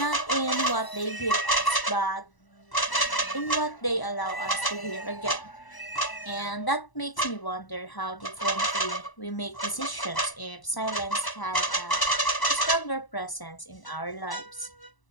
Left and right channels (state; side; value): late; right; 1.0 ms